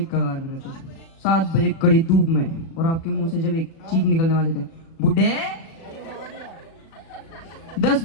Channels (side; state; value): right; late; 36 ms